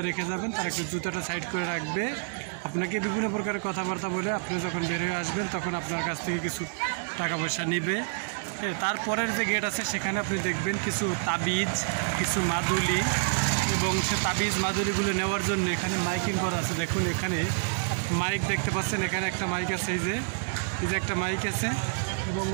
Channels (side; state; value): left; silent; 59 dB below the other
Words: রেখে যাবেন, তারা একটু জুতাটা সাইড করে রাখবে, আপনাকে বিভিন্ন প্রকারের কথাবার্তা বলে আপনি যখন বের হয়ে আসবেন তখন আপনার কাছ থেকে কিছু টাকা পয়সা নেবে। তারপরের যে গেট আছে সেখানে আপনি দেখবেন কিছু তাবিজ, কিছু মাদুলি, এবং সে তাবিজ মাদুলিগুলো নেওয়ার জন্য এখানে মাইকিং করা আছে। দেখুন এখানে মাইক দেখতে পাচ্ছেন, এখানে একটা মাইক আছে, এই যে একটা মাইক আছে, এবং